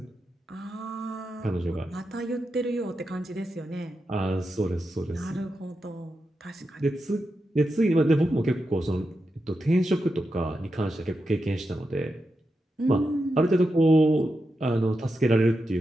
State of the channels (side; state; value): both; normal; correlation 0.88